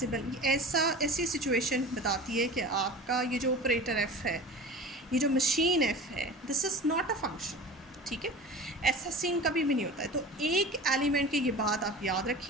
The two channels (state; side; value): normal; both; correlation 0.36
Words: ऐसी सिचुएशन बताती है कि आपका ये जो ऑपरेटर F है, ये जो मशीन F है, this is not a function, ठीक है। ऐसा सीन कभी भी नहीं होता है। तो एक एलिमेंट की ये बात आप याद